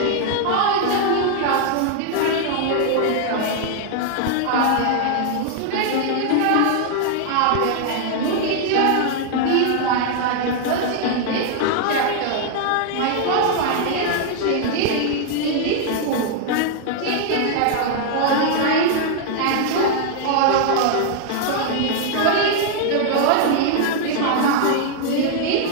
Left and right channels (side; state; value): both; different; correlation 0.00